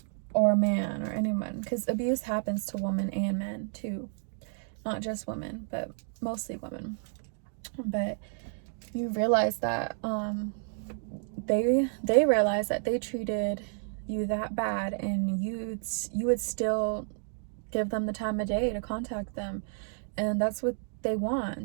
or a man or anyone, because abuse happens to women and men too. Not just women, but mostly women. But you realize that they realize that they treated you that bad, and you would still give them the time of day to contact them. And that's what they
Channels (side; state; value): left; silent; 57 dB below the other